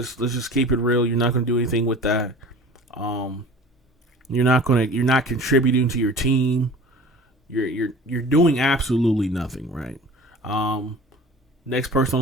keep it real. You're not going to do anything with that. You're not contributing to your team. You're doing absolutely nothing, right? Next person on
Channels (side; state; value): both; normal; correlation 0.41